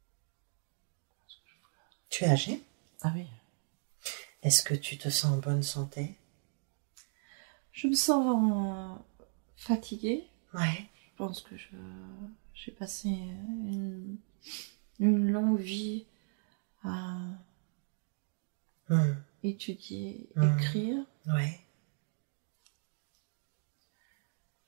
Tu es âgé? Ah oui. Est-ce que tu te sens en bonne santé? Je me sens fatiguée. Ouais. Je pense que j'ai passé une longue vie à étudier, écrire. Ouais.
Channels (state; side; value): silent; left; 54 dB below the other